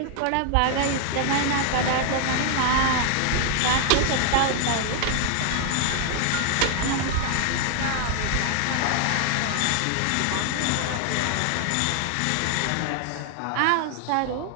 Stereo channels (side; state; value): both; different; correlation 0.00